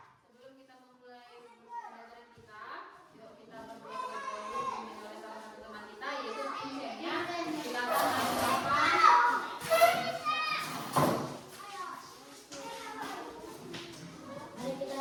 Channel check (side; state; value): both; identical; correlation 1.00